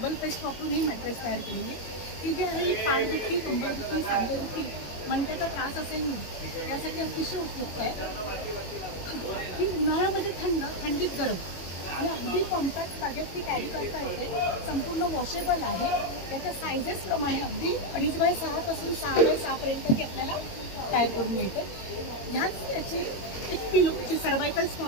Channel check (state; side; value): late; right; 22 ms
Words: पेस्ट वापरून ही मॅट्रेस तयार केलेली आहे. ही जी आहे ही पाठदुखी, कंबरदुखी, सांधेदुखी, मणक्याचा त्रास असेल यासाठी अतिशय उपयुक्त आहे. ही उन्हाळ्यामध्ये थंडीत गरम आणि अगदी कॉम्पॅक्ट बॅगेत ती कॅरी करता येते. संपूर्ण वॉशेबल आहे. याच्या सायझेसप्रमाणे अगदी 2.5x6 पासून 6x6 पर्यंत ती आपल्याला तयार करून मिळते. ह्यात याची एक पिलोची सर्वायकल